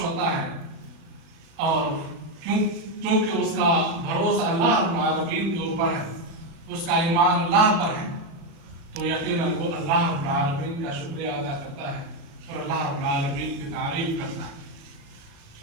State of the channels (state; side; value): late; left; 37 ms